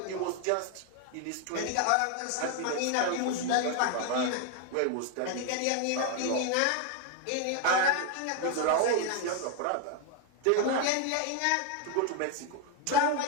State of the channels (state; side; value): different; both; correlation 0.01